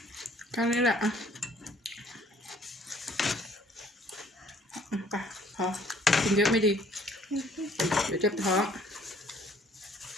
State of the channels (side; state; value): both; normal; correlation 0.59